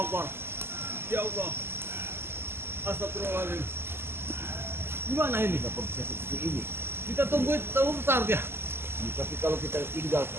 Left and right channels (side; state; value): left; late; 0.12 ms